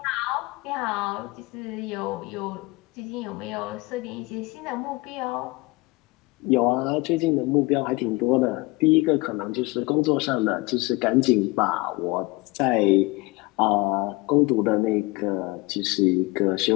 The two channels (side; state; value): right; quieter; 23.8 dB